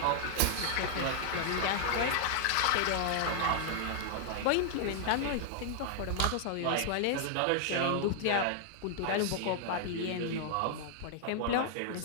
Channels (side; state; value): both; different; correlation 0.00